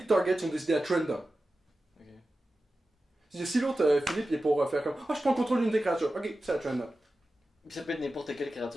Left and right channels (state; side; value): normal; both; correlation 0.94